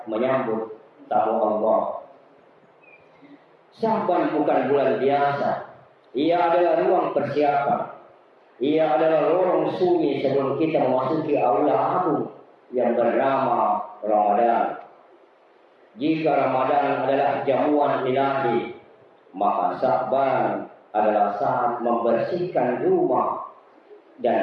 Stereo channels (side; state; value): both; identical; correlation 1.00